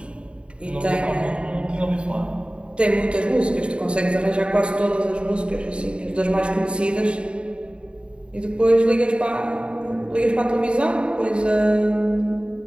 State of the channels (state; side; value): late; left; 0.054 ms